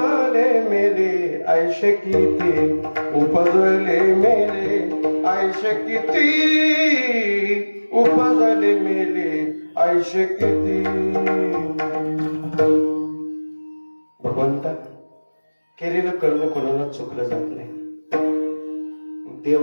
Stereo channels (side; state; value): both; inverted; correlation -1.00